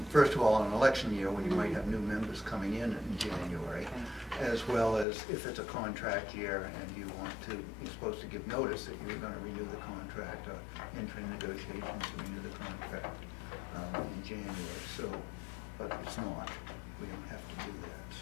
first of all, on an election year when you might have new members coming in January, as well as if it's a contract year and you're supposed to give notice that you're going to renew the contract or enter in negotiations to renew the contract in January. So, but it's not. We don't have to do that,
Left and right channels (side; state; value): right; drops out; at 5.1 s